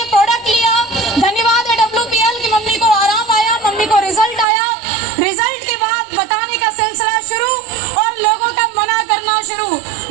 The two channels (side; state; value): left; drops out; at 4.5 s